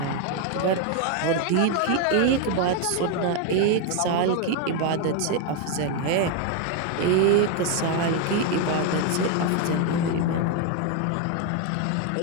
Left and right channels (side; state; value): both; different; correlation 0.01